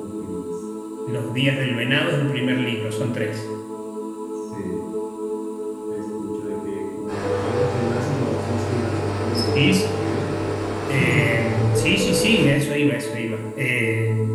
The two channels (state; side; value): identical; both; correlation 1.00